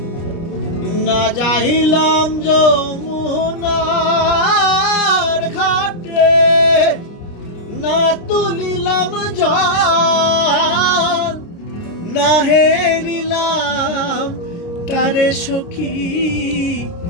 না যাইলাম যমুনার ঘাটে না তুলিলাম জল না হেরিলাম তারে সখী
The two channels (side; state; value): right; late; 29 ms